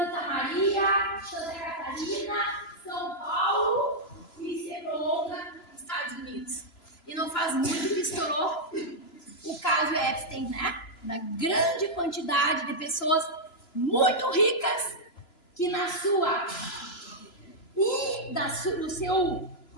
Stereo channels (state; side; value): late; right; 3.0 ms